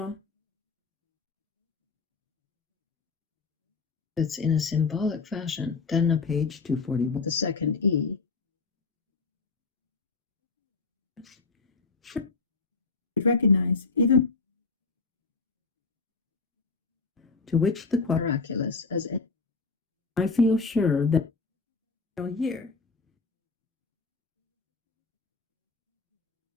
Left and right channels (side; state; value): right; quieter; 4.3 dB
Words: it's in a symbolic fashion. Then a Page 241. the second E recognize even To which the miraculous as in I feel sure that here